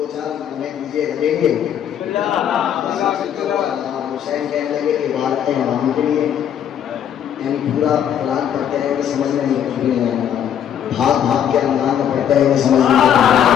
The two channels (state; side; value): quieter; right; 9.4 dB